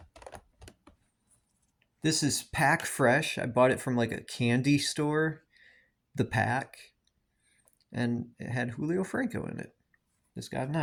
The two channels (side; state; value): both; identical; correlation 1.00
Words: This is Pack Fresh. I bought it from like a candy store. The pack. And it had Julio Franco in it. This got a